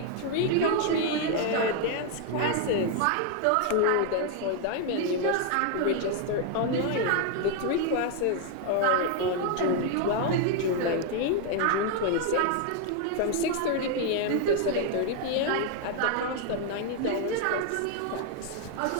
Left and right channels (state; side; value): different; both; correlation 0.00